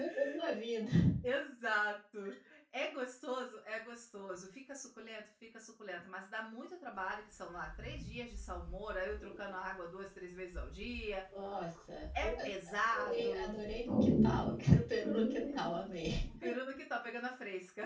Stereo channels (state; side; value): identical; both; correlation 1.00